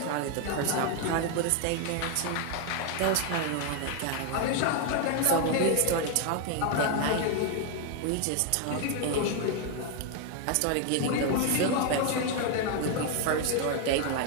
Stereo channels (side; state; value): both; different; correlation 0.01